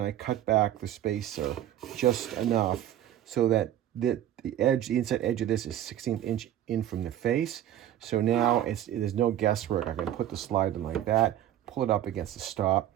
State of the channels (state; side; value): quieter; left; 11.8 dB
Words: I cut back the spacer just enough so that the inside edge of this is 1/16 inch in from the face. So now there's no guesswork. I can put the slide in like that, pull it up against the stop,